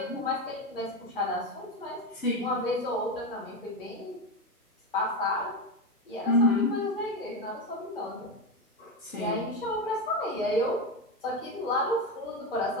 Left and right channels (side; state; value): both; normal; correlation 0.15